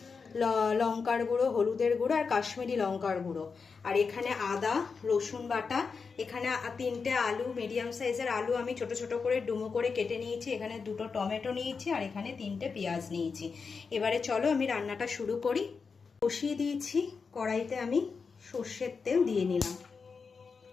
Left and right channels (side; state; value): right; quieter; 5.2 dB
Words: লঙ্কার গুঁড়ো, হলুদের গুঁড়ো আর কাশ্মীরি লঙ্কার গুঁড়ো। আর এখানে আদা রসুন বাটা। এখানে 3টে আলু, মিডিয়াম সাইজের আলু আমি ছোট ছোট করে ডুমো করে কেটে নিয়েছি। এখানে 2টো টমেটো নিয়েছি আর এখানে 3টে পেঁয়াজ নিয়েছি। এবারে চলো আমি রান্নাটা শুরু করি। বসিয়ে দিয়েছি কড়াইতে, আমি সর্ষের তেল দিয়ে নিলাম।